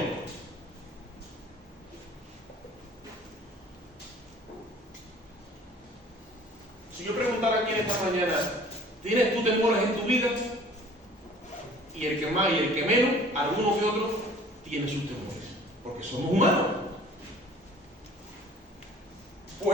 Si yo preguntara aquí en esta mañana: ¿tienes tú temores en tu vida? Y el que más y el que menos, alguno que otro, tiene sus temores, porque somos humanos.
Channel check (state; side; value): normal; both; correlation 0.50